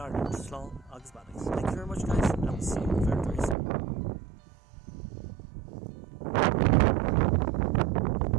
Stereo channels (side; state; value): left; drops out; at 3.6 s